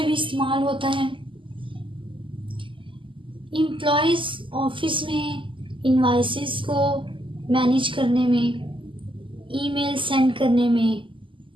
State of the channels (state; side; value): late; left; 0.25 ms